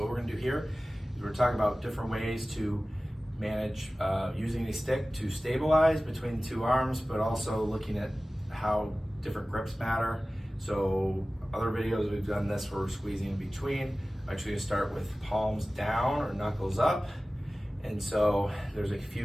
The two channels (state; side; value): normal; both; correlation 0.97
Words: what we're gonna do here is we're talking about different ways to manage using a stick to stabilize between the two arms, but also looking at how different grips matter. So other videos we've done this where we're squeezing in between. I'm actually gonna start with palms down or knuckles up. And so there's a